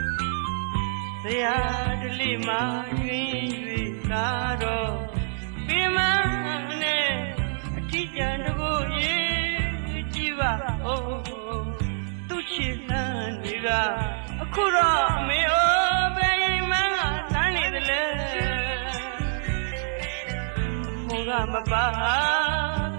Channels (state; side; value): silent; left; digital silence